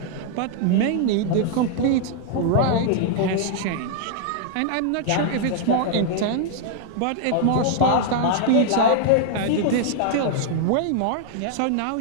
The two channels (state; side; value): different; both; correlation -0.01